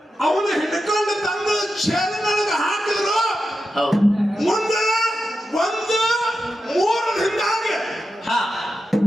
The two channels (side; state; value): both; normal; correlation 0.89